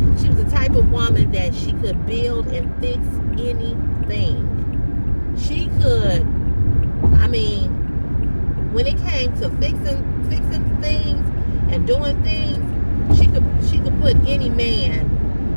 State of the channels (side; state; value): both; inverted; correlation -1.00